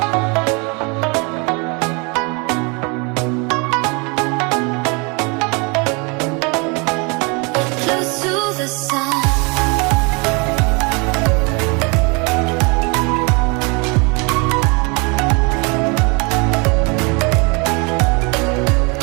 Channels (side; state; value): left; quieter; 30.9 dB